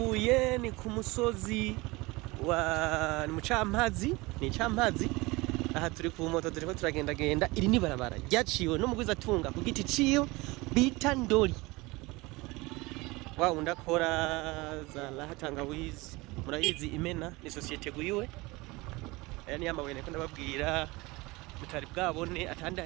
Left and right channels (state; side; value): quieter; left; 22.7 dB